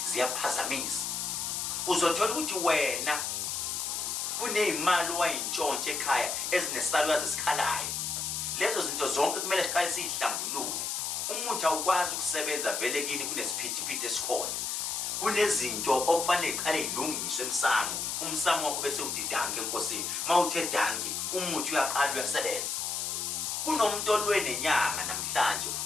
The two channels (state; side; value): noise; left; hiss, 2 dB below the sound